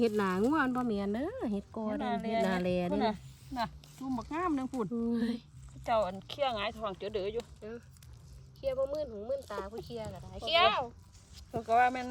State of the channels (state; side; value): identical; both; correlation 1.00